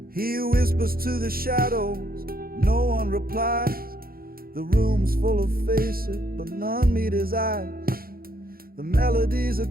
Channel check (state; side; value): late; left; 0.43 ms